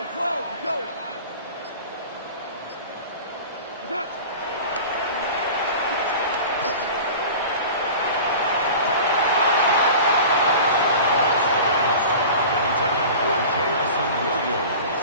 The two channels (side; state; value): both; inverted; correlation -0.37